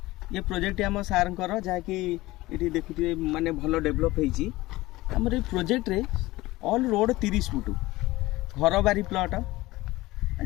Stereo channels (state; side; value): quieter; right; 18.9 dB